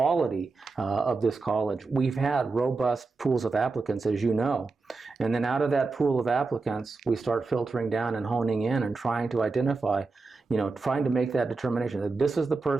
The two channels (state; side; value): quieter; left; 4.0 dB